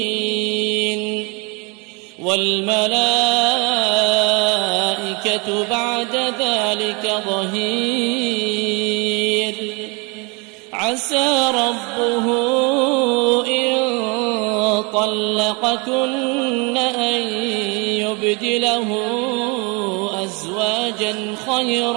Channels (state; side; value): quieter; left; 30.0 dB